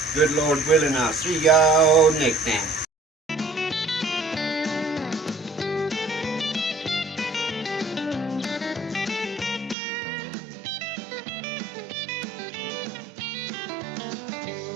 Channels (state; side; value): drops out; left; at 9.8 s